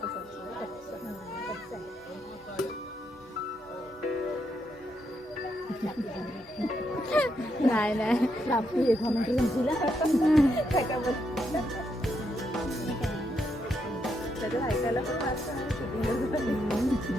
नाही नाही ऐकायला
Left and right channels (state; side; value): normal; both; correlation 0.79